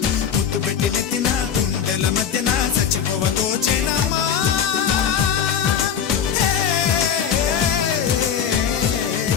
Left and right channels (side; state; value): right; quieter; 8.0 dB